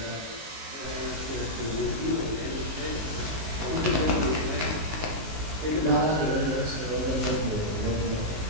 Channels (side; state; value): left; late; 19 ms